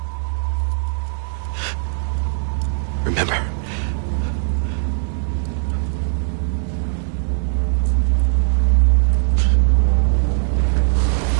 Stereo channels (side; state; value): left; silent; 61 dB below the other